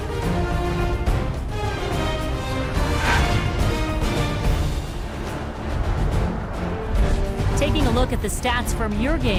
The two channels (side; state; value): both; identical; correlation 1.00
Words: Taking a look at the stats from your